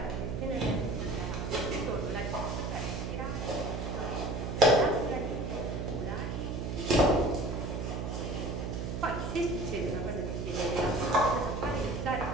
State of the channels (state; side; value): noise; right; hum, 3 dB below the sound